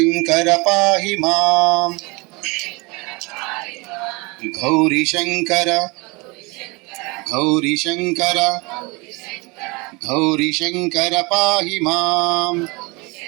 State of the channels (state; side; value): quieter; left; 26.9 dB